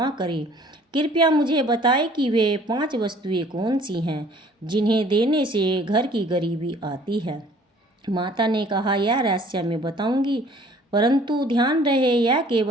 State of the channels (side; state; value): both; normal; correlation 0.54